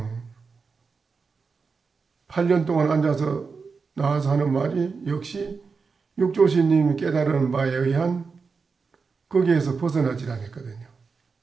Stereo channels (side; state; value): left; quieter; 5.0 dB